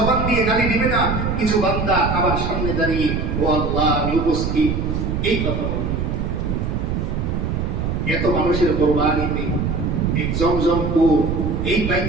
দিয়ে গালি দিবে না, কিছু বান্দা আবার সামনে দাঁড়িয়ে, ও আল্লাহ আমি উপস্থিত, এই কথা বলবে। এত মানুষের কোরবানিতে এই জমজম কূপ, এই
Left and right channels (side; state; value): right; noise; rumble, 1 dB below the sound